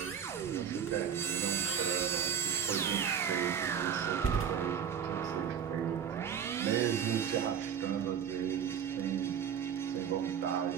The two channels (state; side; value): quieter; left; 8.0 dB